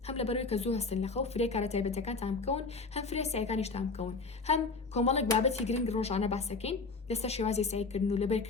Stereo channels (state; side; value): quieter; right; 4.1 dB